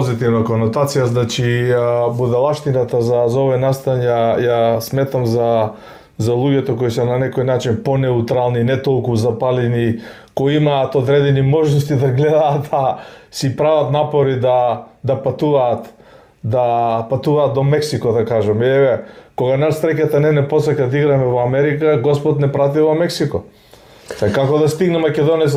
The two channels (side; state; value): both; identical; correlation 1.00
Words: конотација, значи будалаштината за овој настан ја сметам за луѓето кои се на некој начин понеутрални, не толку запалени, кои имаат одредени можности да гледаат, си прават напори да патуваат до Мексико, да кажем. Еве, кога нас стреката не посака да играме во Америка, Господ не прати во Мексико. Како да стигне